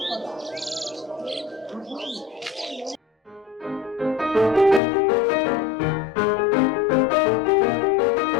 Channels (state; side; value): drops out; right; at 4.8 s